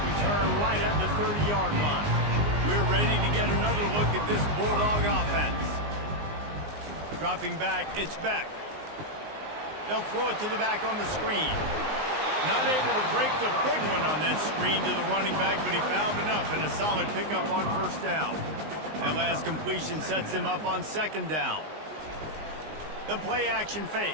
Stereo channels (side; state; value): left; late; 19 ms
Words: return right at the 30-yard line. We're ready to get another look at this Bulldog offense. Dropping back, it's Beck. They'll throw it to the back on the screen. Not able to break the big one on that screen to the running back, but he found enough and a solid pickup on first down. That last completion sets him up on second down. The play action fake.